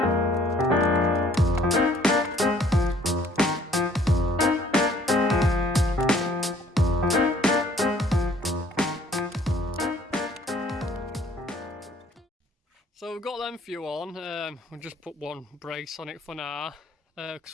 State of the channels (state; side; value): normal; both; correlation 0.60